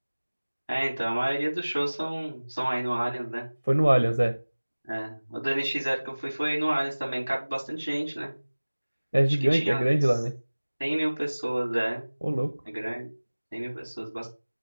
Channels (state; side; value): inverted; both; correlation -1.00